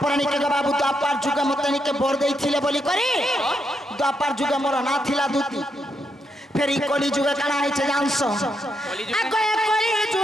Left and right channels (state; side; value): normal; both; correlation 0.80